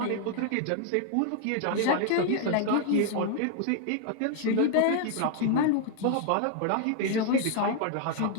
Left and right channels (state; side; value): different; both; correlation 0.00